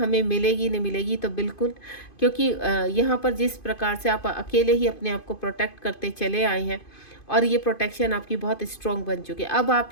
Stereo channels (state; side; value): late; right; 2.5 ms